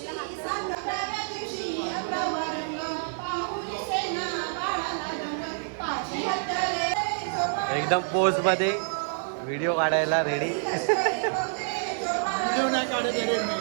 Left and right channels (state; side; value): silent; left; 60 dB below the other